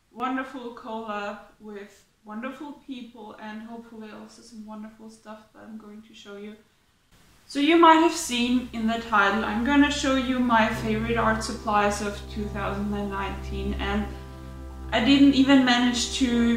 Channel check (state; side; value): identical; both; correlation 1.00